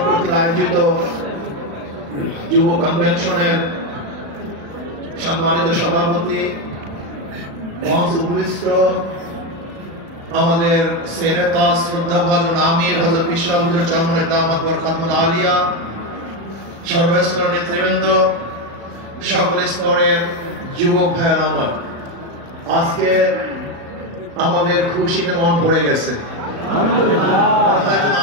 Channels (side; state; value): left; late; 36 ms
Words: কর্তৃক আয়োজিত যুব কনভেনশনের সম্মানিত সভাপতি মহাসুপৃষ্ট আমাদের সেরেতা শ্রদ্ধাভাজন আমির হযরত বিশ্বহুজুর চরমনায় দামাত বরকাতুল আলিয়া, সর্বস্তরের নেতৃবৃন্দ, সকল স্তরের যুবক ভাইয়ের আমার, আজকে আমাদের খুশিতে মন ভরে গেছে।